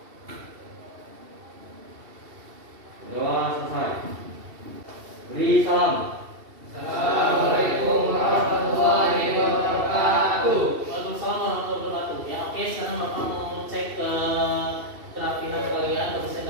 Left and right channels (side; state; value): left; late; 2.7 ms